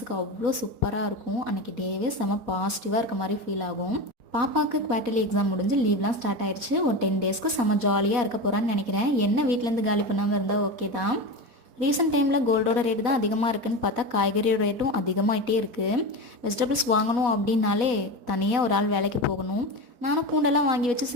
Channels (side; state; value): left; late; 4.1 ms